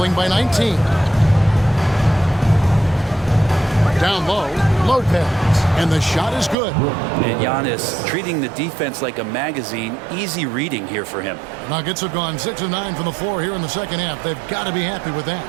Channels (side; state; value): left; drops out; at 6.6 s